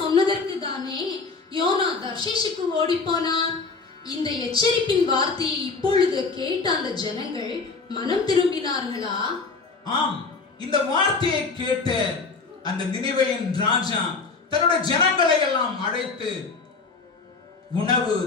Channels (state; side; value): quieter; right; 4.3 dB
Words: சொன்னதற்கு தானே யோனா தர்ஷீஷுக்கு ஓடி போனார். இந்த எச்சரிப்பின் வார்த்தையை இப்பொழுது கேட்ட அந்த ஜனங்கள் மனம் திரும்பினார்களா? ஆம், இந்த வார்த்தையை கேட்ட அந்த நினிவேயின் ராஜா தன்னுடைய ஜனங்களை எல்லாம் அழைத்து உணவு